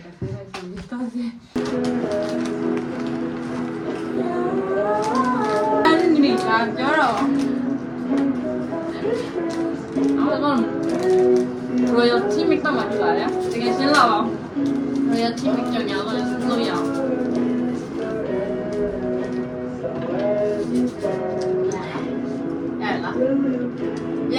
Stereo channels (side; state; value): both; identical; correlation 1.00